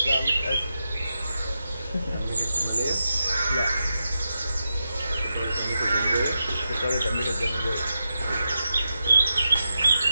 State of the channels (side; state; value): both; inverted; correlation -0.88